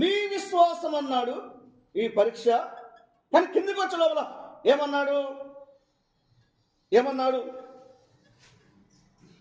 మీ విశ్వాసం అన్నాడు ఈ పరీక్ష. కానీ కిందికి వచ్చే లోపల ఏమన్నాడు?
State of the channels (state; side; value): identical; both; correlation 1.00